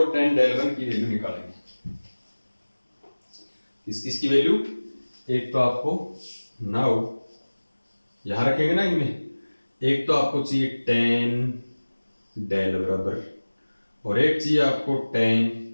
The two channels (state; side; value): inverted; both; correlation -1.00